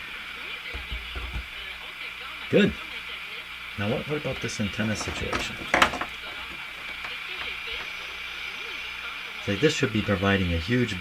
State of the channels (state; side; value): identical; both; correlation 1.00